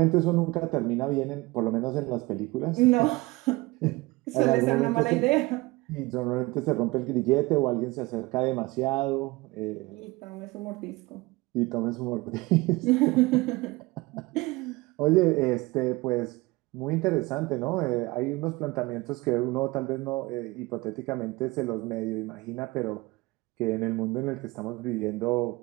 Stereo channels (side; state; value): left; quieter; 22.0 dB